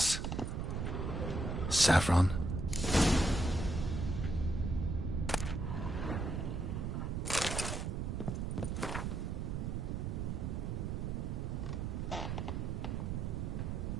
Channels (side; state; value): right; noise; rumble, 2 dB below the sound